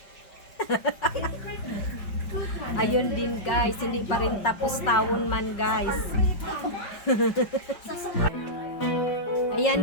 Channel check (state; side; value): late; right; 5.5 ms